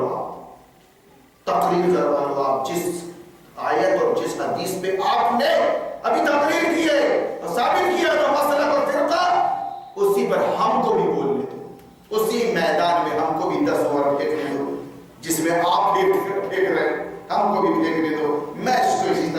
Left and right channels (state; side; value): identical; both; correlation 1.00